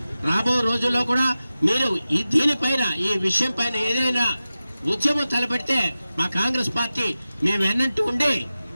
రాబో రోజుల్లో కూడా మీరు దీనిపైన ఈ విషయం పైన ఏదైనా ఉద్యమం తలపెడితే మా కాంగ్రెస్ పార్టీ మేము వెన్నంటూ ఉండి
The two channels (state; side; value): inverted; both; correlation -0.94